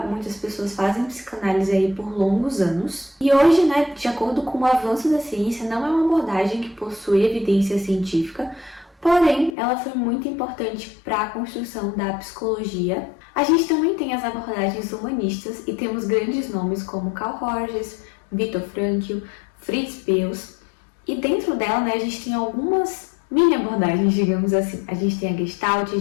muitas pessoas fazem psicanálise aí por longos anos. E hoje, de acordo com o avanço da ciência, não é uma abordagem que possui evidência científica, porém, ela foi muito importante para a construção da psicologia. A gente também tem as abordagens humanistas e temos grandes nomes como Carl Rogers, Viktor Frankl, Fritz Perls. E dentro dela, a gente tem algumas mini abordagens, digamos assim. A gente tem a Gestalt, a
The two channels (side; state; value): right; drops out; at 9.6 s